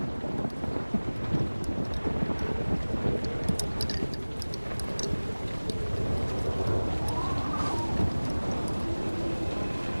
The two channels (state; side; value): inverted; both; correlation -1.00